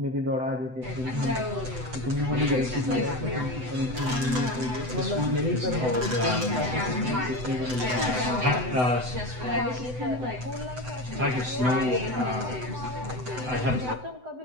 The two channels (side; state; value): left; late; 7.9 ms